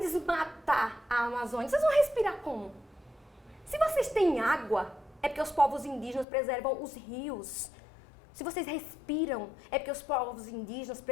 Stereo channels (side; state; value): right; drops out; at 6.2 s